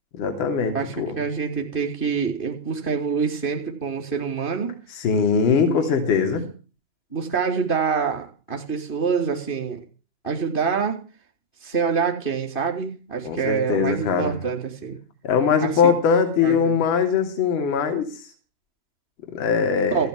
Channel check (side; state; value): right; late; 2.5 ms